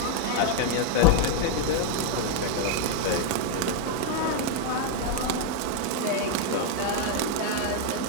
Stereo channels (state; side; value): different; both; correlation 0.01